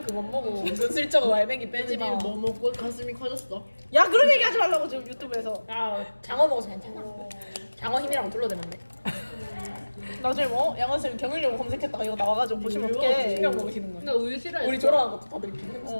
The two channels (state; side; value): inverted; both; correlation -1.00